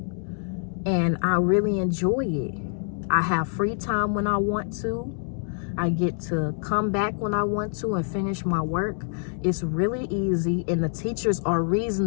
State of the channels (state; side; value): silent; right; 58 dB below the other